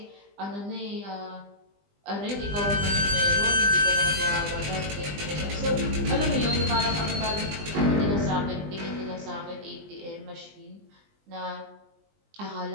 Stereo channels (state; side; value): late; left; 20 ms